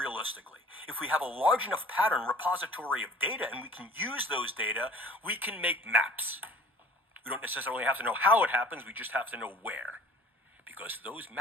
If we have a large enough pattern repository of data and we can use those data, we can make maps. We don't necessarily have to know how it happens, we just have to know where. Because those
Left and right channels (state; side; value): normal; both; correlation 0.46